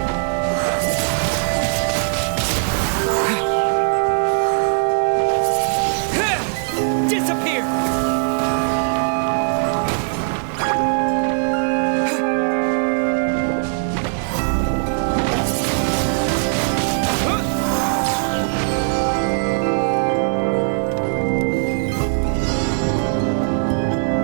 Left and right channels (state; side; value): silent; left; digital silence